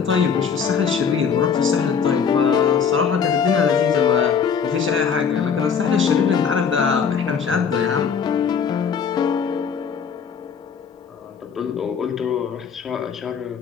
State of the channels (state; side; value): quieter; right; 6.6 dB